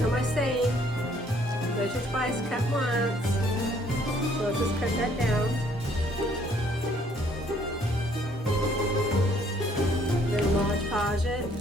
know my saying, measure twice, cut once. So let's just cut that down. Then Mod Podge it.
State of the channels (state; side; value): normal; both; correlation 0.63